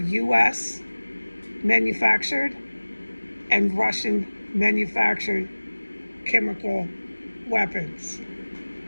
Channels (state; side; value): inverted; both; correlation -1.00